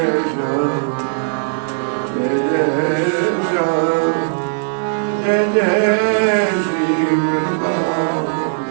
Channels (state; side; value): silent; left; digital silence